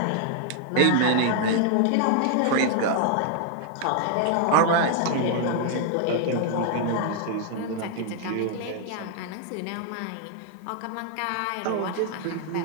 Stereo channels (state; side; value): different; both; correlation 0.00